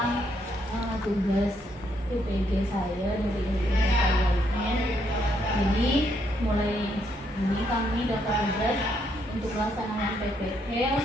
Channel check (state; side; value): normal; both; correlation 0.74